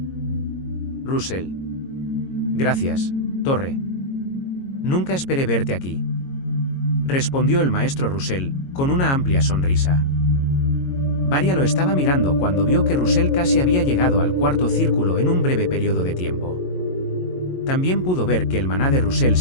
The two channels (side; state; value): right; late; 22 ms